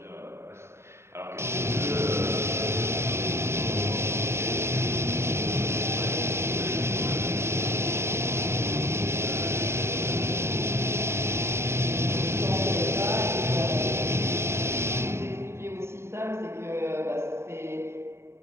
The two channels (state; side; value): late; left; 0.13 ms